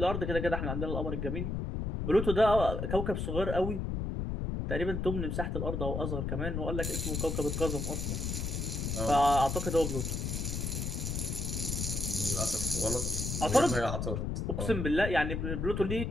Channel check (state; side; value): noise; left; rumble, 2 dB below the sound